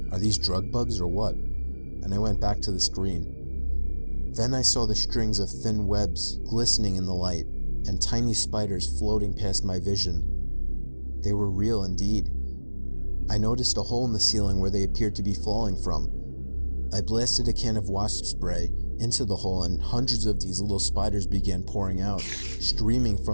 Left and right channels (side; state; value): both; inverted; correlation -1.00